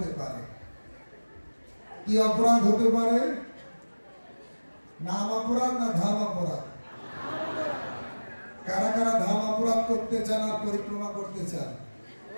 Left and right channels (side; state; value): both; inverted; correlation -1.00